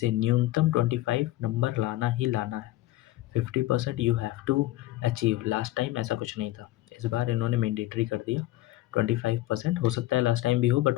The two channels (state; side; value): quieter; right; 16.5 dB